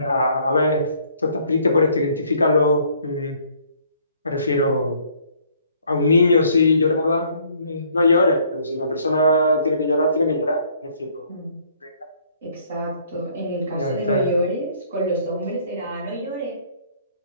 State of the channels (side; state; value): both; inverted; correlation -0.62